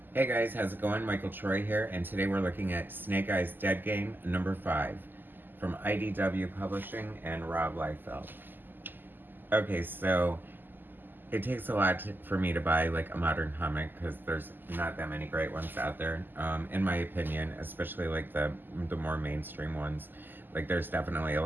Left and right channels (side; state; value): left; late; 0.091 ms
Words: Hey guys, how's it going? Michael Troy here, and today we're looking at Snake Eyes Dead Game number 5 from IDW Publishing and Rob Liefeld. Okay, so it takes a lot for me to buy like a modern comic because there's not that many great ones out there, in my opinion, especially like the more mainstream ones. Like there's definitely a